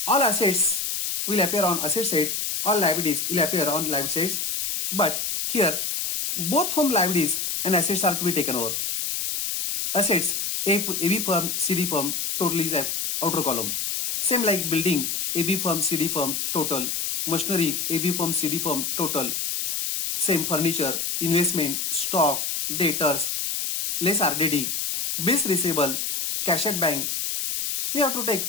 all assets will appear on asset side, all liabilities will appear on liability sides. But here, both firm liabilities and assets are to be taken over. Assets, AB firm, CD firm, total is a outer column. Same like building, AB firm, CD firm, total. Machinery, AB firm, CD firm, total. Same furniture, investment, stock, debtors, less RDD, bills receivable, cash at bank. We have to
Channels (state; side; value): noise; left; hiss, 1 dB below the sound